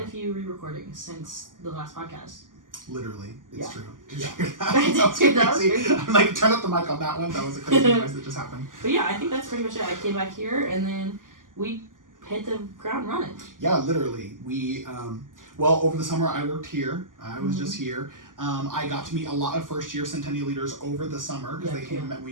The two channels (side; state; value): left; late; 0.89 ms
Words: a few re-recordings since the last podcast. Literally, it's true. Did you hear that? That was crazy. I'm like, turn up the mic on that one. That was a crazy noise that just happened. But yeah, I think that's pretty much it. I came back here, and then we hit the ground running. Yeah, literally. We, well, over the summer I worked here. I was just here. I got to meet a lot of first-year Centennial leaders over the summer because they came and met me